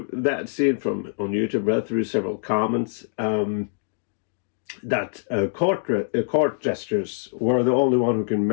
that scene on YouTube. Read through several comments that court gestures were the only one who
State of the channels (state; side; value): silent; right; 62 dB below the other